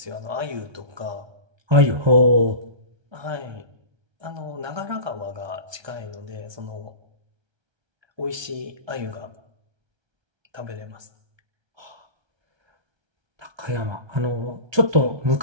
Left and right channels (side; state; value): left; late; 1.3 ms